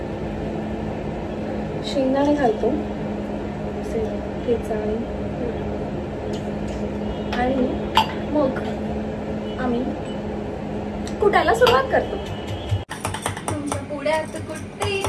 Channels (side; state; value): both; identical; correlation 1.00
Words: शेंगदाणे घालतो ठेचा आणि मग आम्ही कुटायला सुरुवात करतो. तुमच्या पुढ्यात कुठे